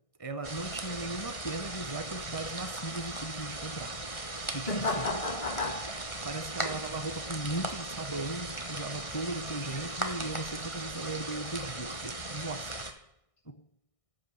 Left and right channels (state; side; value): late; right; 1.6 ms